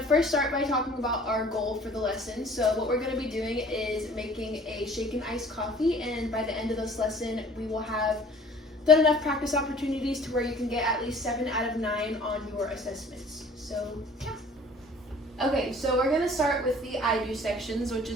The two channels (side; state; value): both; normal; correlation 0.50